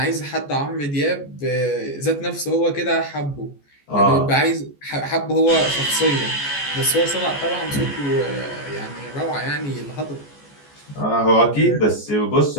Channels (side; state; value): right; late; 14 ms